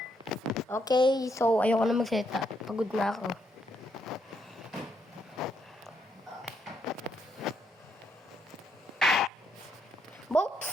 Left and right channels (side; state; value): both; normal; correlation 0.76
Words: Okay, so ayoko na mag-seta. Pagod na ako. Both